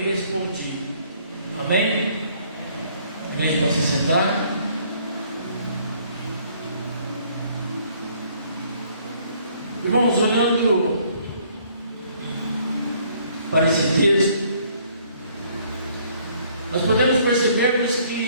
Amém? Amém? Pode se sentar. Irmãos, olhando para esse texto, nós podemos percebermos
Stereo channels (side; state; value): both; inverted; correlation -0.63